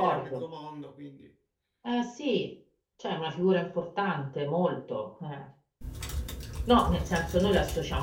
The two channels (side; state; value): both; identical; correlation 1.00